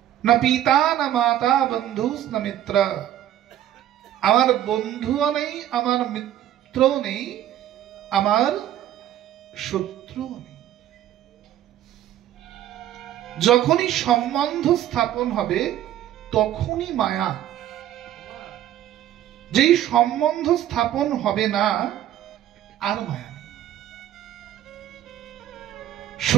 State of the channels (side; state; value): left; quieter; 12.1 dB